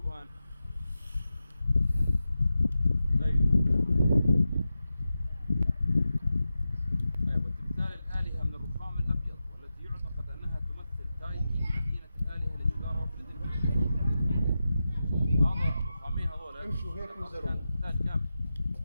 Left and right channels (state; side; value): inverted; both; correlation -0.91